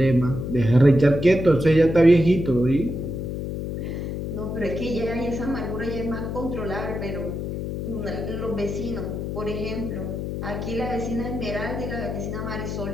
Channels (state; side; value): noise; left; hum, 4 dB below the sound